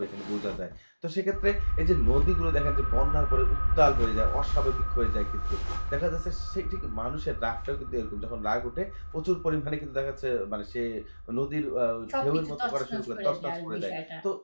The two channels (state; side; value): inverted; both; correlation -1.00